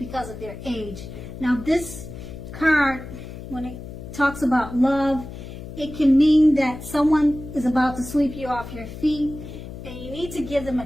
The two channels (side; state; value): left; noise; hum, 11 dB below the sound